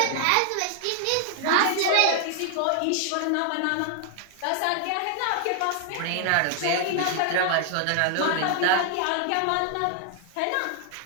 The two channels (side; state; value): both; different; correlation 0.00